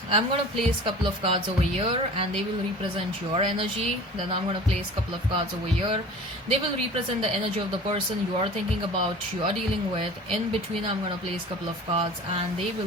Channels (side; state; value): both; normal; correlation 0.42